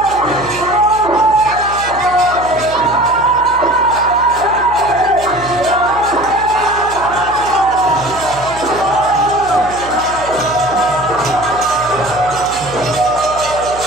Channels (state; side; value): noise; right; hum, 16 dB below the sound